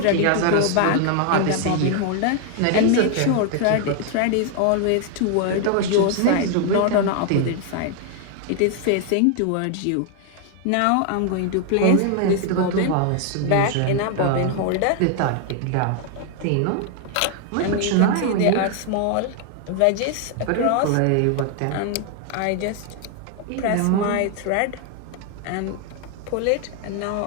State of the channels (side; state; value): both; different; correlation 0.00